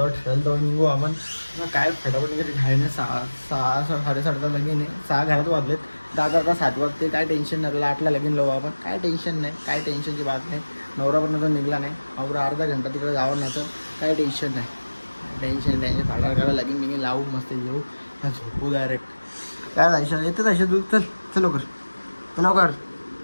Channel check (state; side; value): inverted; both; correlation -1.00